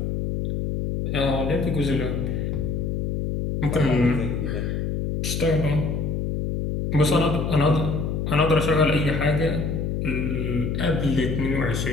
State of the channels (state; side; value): noise; left; hum, 1 dB below the sound